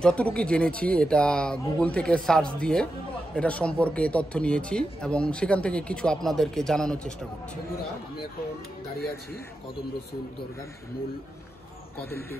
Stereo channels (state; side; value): normal; both; correlation 0.89